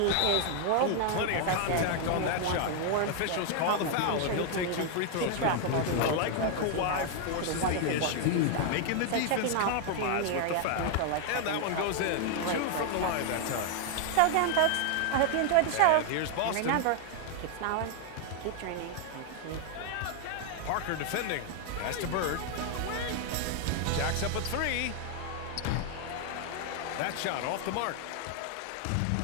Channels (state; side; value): different; both; correlation 0.00